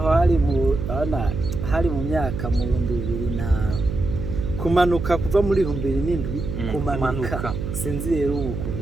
hari mu myaka mu 2000 na kumanuka kuva muri 2007 kumanuka sinzi rero ukuntu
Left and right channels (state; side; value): noise; right; hum, 5 dB below the sound